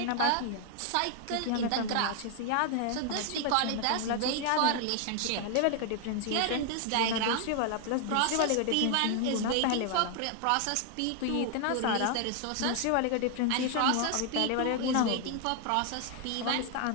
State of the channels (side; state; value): both; different; correlation 0.00